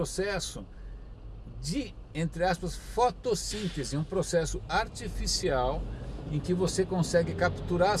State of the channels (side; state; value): both; identical; correlation 1.00